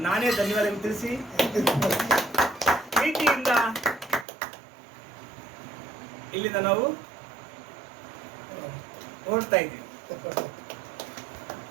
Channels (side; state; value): left; drops out; at 4.2 s